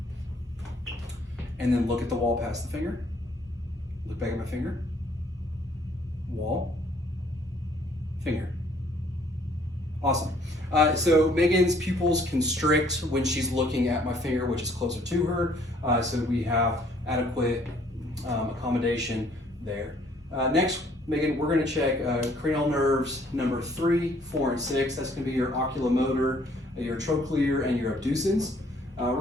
and then look at the wall past the finger. Look back at my finger. Wall. Finger. Awesome. So Megan's pupils constrict when she's looking at my finger, which is closer to her. So we have adequate accommodation there. Next, Megan, we're going to check cranial nerves number 3, 4, and 6. That's going to be your oculomotor, your trochlear, and your abducens. We're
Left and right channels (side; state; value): both; normal; correlation 0.62